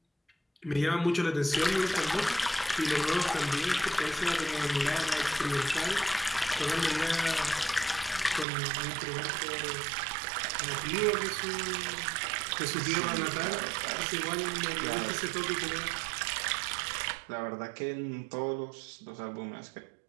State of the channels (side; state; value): left; drops out; at 8.5 s